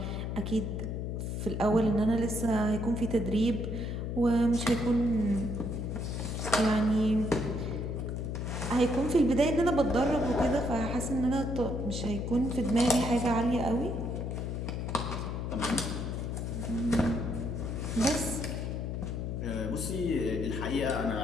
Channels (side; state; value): left; noise; hum, 3 dB below the sound